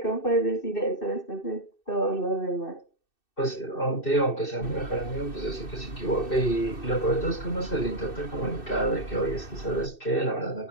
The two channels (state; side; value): late; right; 2.6 ms